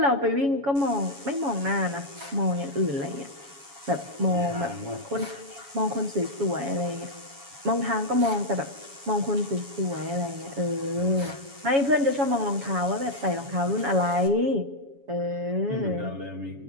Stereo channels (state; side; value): late; left; 7.2 ms